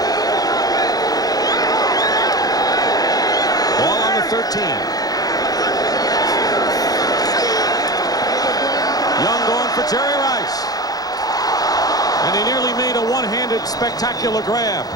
Ball on the 13. Young going for Jerry Rice. And he nearly made a one-handed spectacular grab.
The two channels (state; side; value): late; right; 0.18 ms